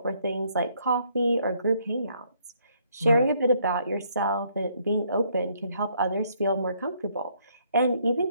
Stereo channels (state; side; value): inverted; both; correlation -0.68